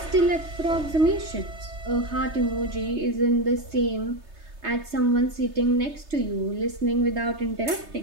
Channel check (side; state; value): left; late; 3.3 ms